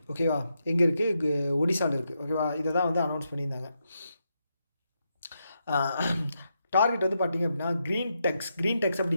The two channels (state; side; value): inverted; both; correlation -0.83